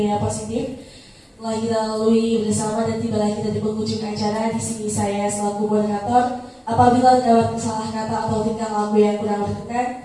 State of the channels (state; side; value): identical; both; correlation 1.00